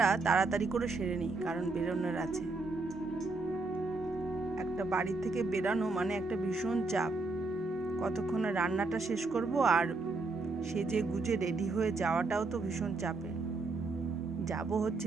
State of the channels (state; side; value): quieter; left; 3.5 dB